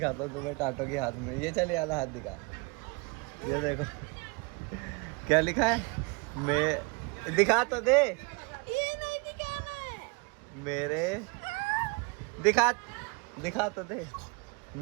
हूँ तुम्हें टाटो के हाथ में। ये चल वाला हाथ दिखा, ये देखो क्या लिखा है। मैं दिखा तो दे, ये नहीं दिखाना है मेरे दिखा तो दे,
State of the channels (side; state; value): left; quieter; 29.5 dB